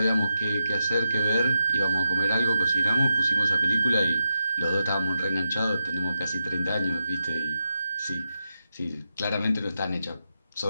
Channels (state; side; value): inverted; both; correlation -0.87